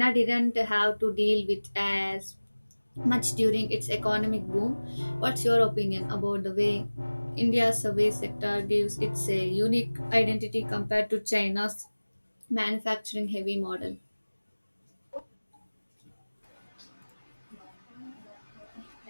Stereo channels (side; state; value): both; inverted; correlation -1.00